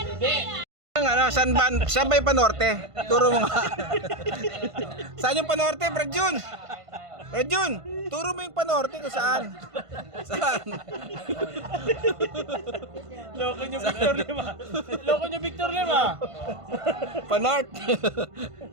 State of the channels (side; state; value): left; late; 1.5 ms